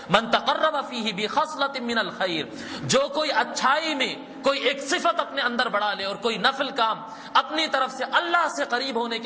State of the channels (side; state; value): both; identical; correlation 1.00